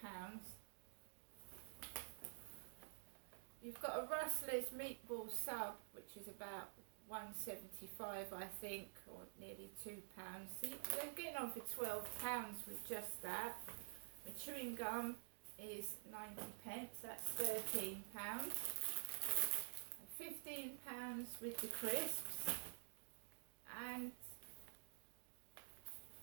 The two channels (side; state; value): left; silent; digital silence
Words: You've got a Rustler's meatball sub, which is about £1.75, I think, or nearly £2. So they're getting on for £12 with just that. My chewing gum is 90p, that's £13. £15 with the crisps, and